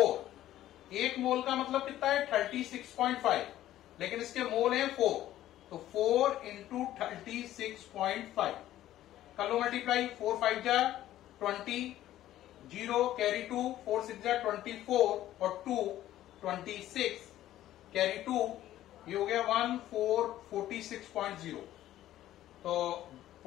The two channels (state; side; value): quieter; right; 13.5 dB